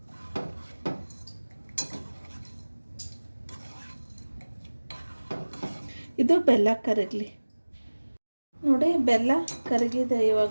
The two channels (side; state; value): both; inverted; correlation -1.00